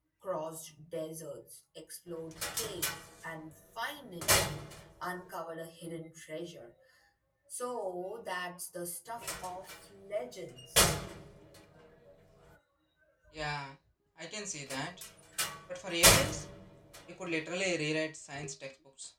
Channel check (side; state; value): both; identical; correlation 1.00